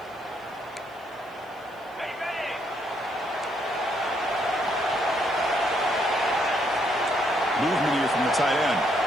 Movement here from the tight end.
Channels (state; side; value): noise; right; hiss, 30 dB below the sound